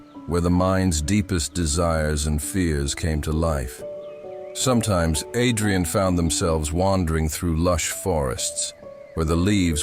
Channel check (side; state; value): both; identical; correlation 1.00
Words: where the mind's deepest desires and fears came to life. Sometimes Adrian found themselves wandering through lush forests, where the